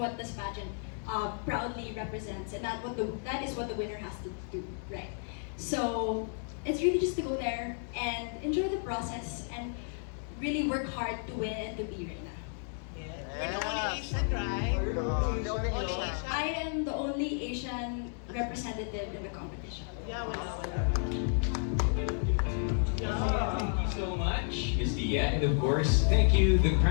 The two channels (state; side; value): silent; right; 55 dB below the other